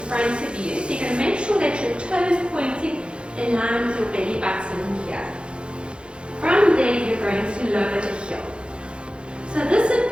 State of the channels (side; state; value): left; late; 0.056 ms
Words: of you. So you're going to make sure that your toe is pointing in line with your belly button here. From there, you're going to lower the heel. So this would